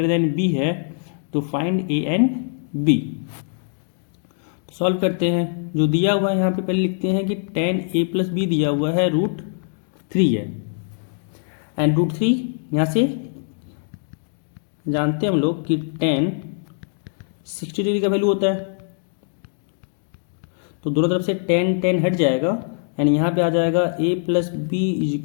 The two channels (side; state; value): right; silent; digital silence